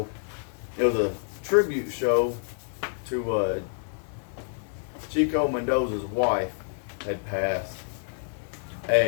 It was a tribute show to Chico Mendoza's wife had passed,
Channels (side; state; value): right; silent; 59 dB below the other